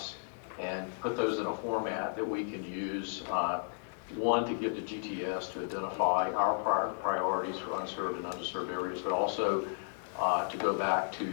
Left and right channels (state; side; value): silent; right; digital silence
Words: and put those in a format that we can use, one, to give to GTS to identify our priorities for unserved and underserved areas, but also to go back to